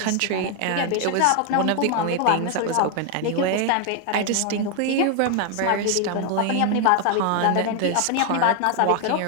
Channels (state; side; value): different; both; correlation 0.00